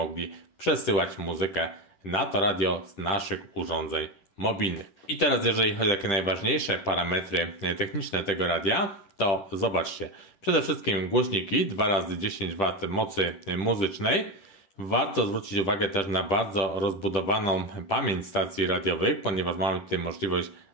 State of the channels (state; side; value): late; right; 10 ms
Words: przesyłać muzykę na to radio z naszych urządzeń mobilnych. I teraz jeżeli chodzi o takie najważniejsze parametry techniczne tego radia, to zobaczcie. Przede wszystkim głośniki 2x10W mocy muzycznej. Warto zwrócić uwagę też na bardzo rozbudowaną pamięć stacji radiowych, ponieważ mamy tutaj możliwość